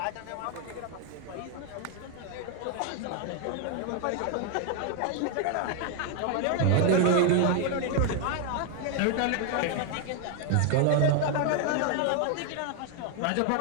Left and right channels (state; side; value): different; both; correlation 0.00